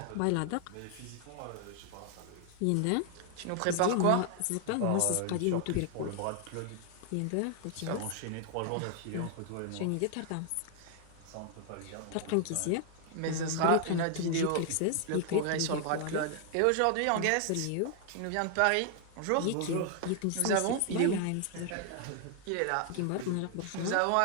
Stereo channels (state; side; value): different; both; correlation 0.00